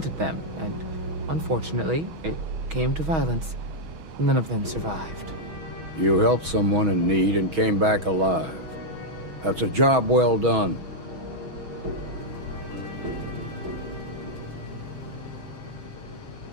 them, and unfortunately, it came to violence. None of them survived. You helped someone in need and came back alive. That's a job well done.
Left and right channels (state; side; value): late; left; 6.3 ms